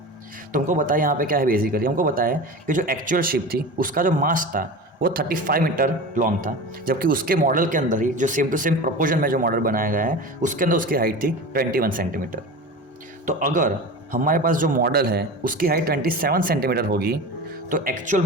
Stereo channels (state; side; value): normal; both; correlation 0.31